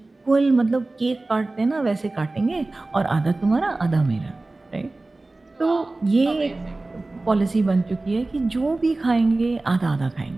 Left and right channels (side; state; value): left; quieter; 3.1 dB